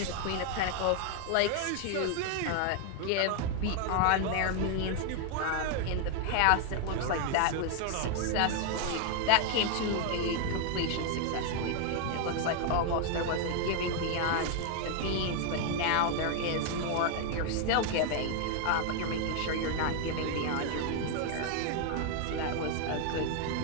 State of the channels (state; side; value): different; both; correlation 0.00